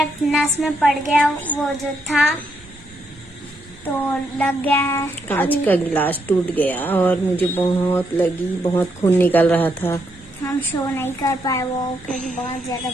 नस में पड़ गया वो जो था, तो लग गया है। कांच का गिलास टूट गया और मुझे बहुत लगी, बहुत खून निकल रहा था। हम शो नहीं कर पाए वो, क्योंकि बहुत ज्यादा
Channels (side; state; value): both; normal; correlation 0.78